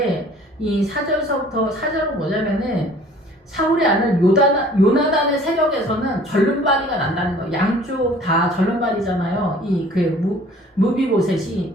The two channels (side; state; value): both; normal; correlation 0.51